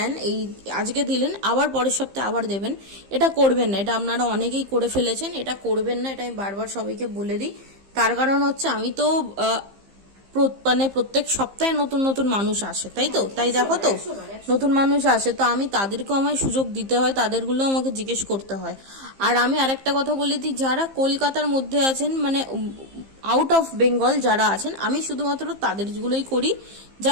এই আজকে দিলেন আবার পরের সপ্তাহে আবার দেবেন, এটা করবেন না, এটা আপনারা অনেকেই করে ফেলেছেন, এটা করবেন না, এটা আমি বারবার সবাইকে বলে দিই। তার কারণ হচ্ছে আমি তো মানে প্রত্যেক সপ্তাহে নতুন নতুন মানুষ আসে, তাই তো, তাই দেখো তো নতুন মানুষ আসে, তো আমি তাদেরকেও আমায় সুযোগ দিতে হয়, তাদেরগুলো আমাকে জিজ্ঞেস করতে হয়। আর আমি আরেকটা কথা বলে দিই, যারা কলকাতার মধ্যে আছেন, মানে আউট অফ বেঙ্গল যারা আছেন, আমি শুধুমাত্র তাদেরগুলোই করি,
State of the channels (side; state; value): left; late; 15 ms